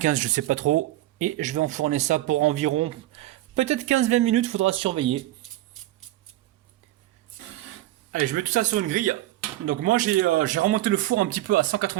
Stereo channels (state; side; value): quieter; left; 15.6 dB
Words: je sais pas trop. Et je vais enfourner ça pour environ peut-être 15-20 minutes, faudra surveiller. Allez, je mets tout ça sur une grille. Donc moi j'ai remonté le four un petit peu à